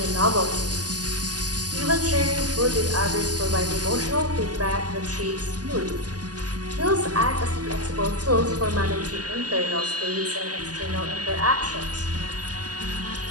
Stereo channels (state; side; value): late; left; 0.68 ms